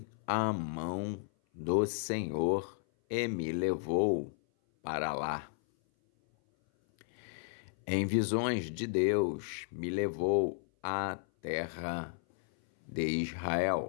a mão do Senhor e me levou para lá. Em visões de Deus, me levou à terra de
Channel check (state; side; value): silent; right; 55 dB below the other